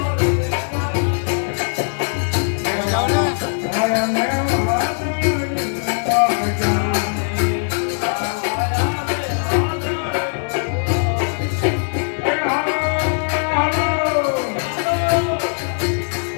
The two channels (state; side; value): silent; right; 55 dB below the other